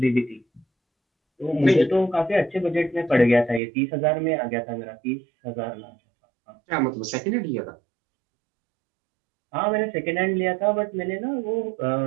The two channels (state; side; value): drops out; left; at 3.6 s